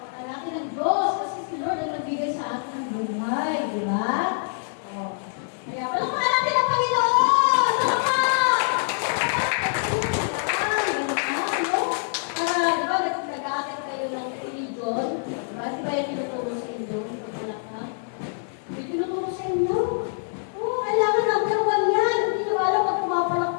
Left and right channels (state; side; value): silent; right; 59 dB below the other